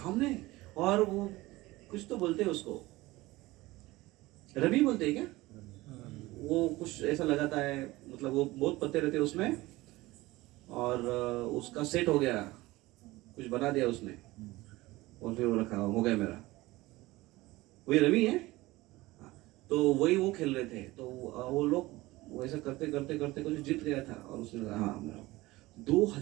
और वो कुछ तो बोलते हैं उसको, रमी बोलते हैं क्या? वो कुछ ऐसा लगाता है, मतलब वो बहुत पत्ते रहते हैं उसमें, और उसका सेट हो गया, कुछ बना दिया उसने, और फिर वो रखा, हो गया मेरा। वही रमी है। तो वही वो खेल रहे थे, तो वो लोग वैसा करते करते करते कुछ जीत गया था, और उसने कहा हाँ मेरा।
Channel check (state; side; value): quieter; left; 19.5 dB